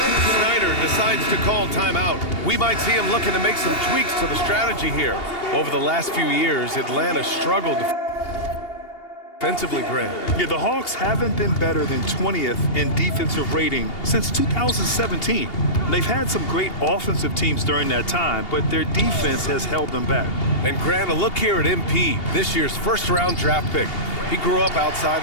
Snyder decides to call timeout. We might see him looking to make some tweaks to the strategy here. Over the last few years, Atlanta struggled defensively, Grant. Yeah, the Hawks haven't been better than 20th in defensive rating since 2017. They've had some great offensive teams during that time, but their defense has held them back. And Grant, a look here at MP, this year's first-round draft pick. He grew up outside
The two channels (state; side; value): late; right; 2.8 ms